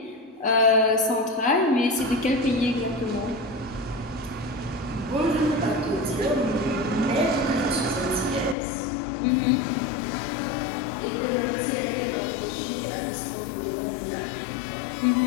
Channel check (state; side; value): drops out; right; at 8.6 s